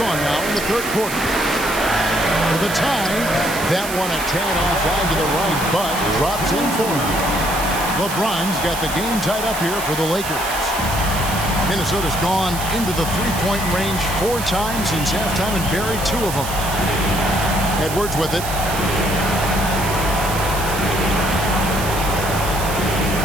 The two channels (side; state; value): right; noise; hiss, 8 dB below the sound